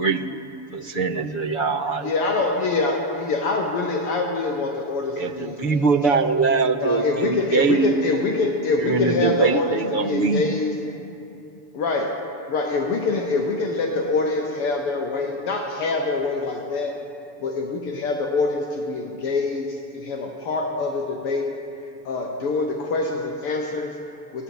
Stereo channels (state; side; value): late; right; 7.0 ms